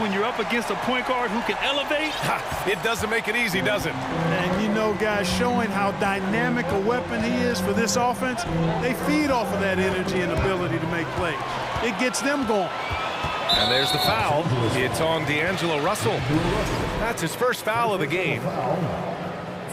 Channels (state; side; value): identical; both; correlation 1.00